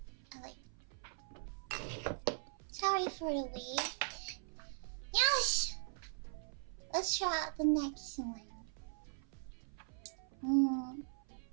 Sorry for the wait. Yes! Let's try out the next one.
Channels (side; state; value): left; silent; 51 dB below the other